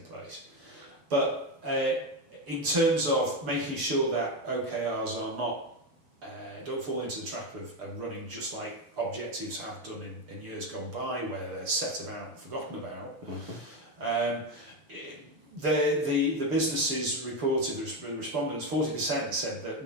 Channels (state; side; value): late; left; 6.8 ms